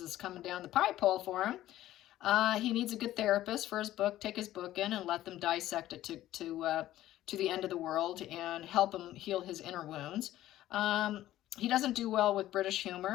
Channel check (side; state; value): right; quieter; 14.1 dB